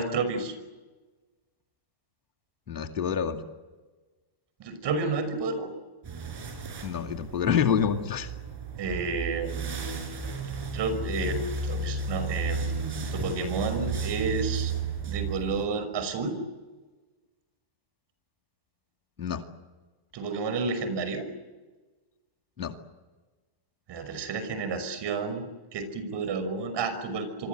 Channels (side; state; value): left; late; 1.1 ms